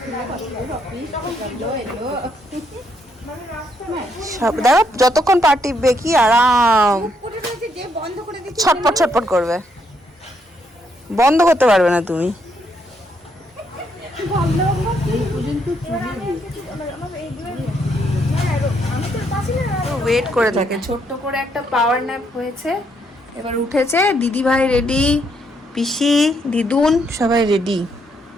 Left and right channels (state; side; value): normal; both; correlation 0.74